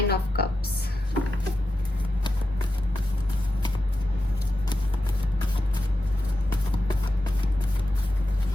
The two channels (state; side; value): normal; both; correlation 0.90